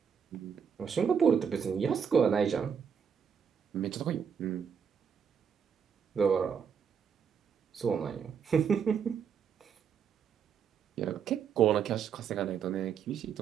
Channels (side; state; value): left; quieter; 7.2 dB